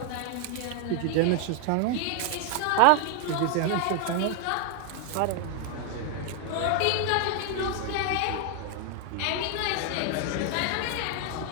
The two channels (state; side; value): different; both; correlation 0.00